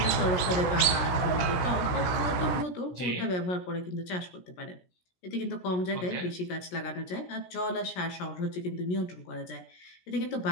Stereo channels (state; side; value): late; right; 16 ms